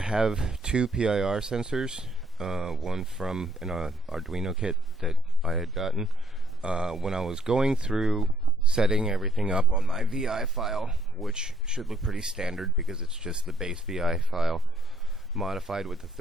have two PIR sensors, one from an Arduino kit that I had gotten. When I was going through setting everything up on my VI file, which should look pretty standard because it's just the base VI file modified with a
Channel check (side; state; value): both; normal; correlation 0.67